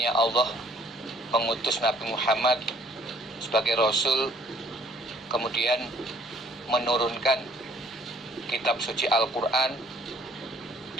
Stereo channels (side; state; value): both; normal; correlation 0.60